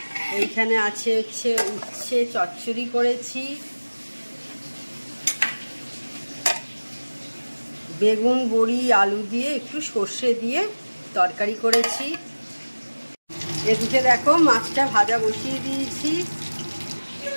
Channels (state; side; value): inverted; both; correlation -1.00